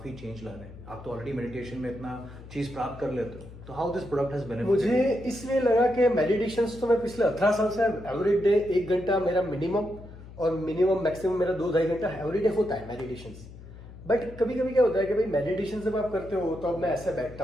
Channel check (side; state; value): left; noise; hum, 16 dB below the sound